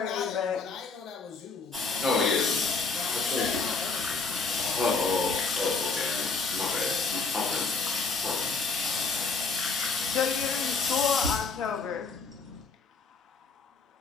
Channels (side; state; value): right; quieter; 4.5 dB